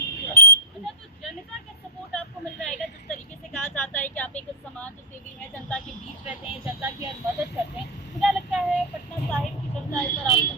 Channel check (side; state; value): both; normal; correlation -0.02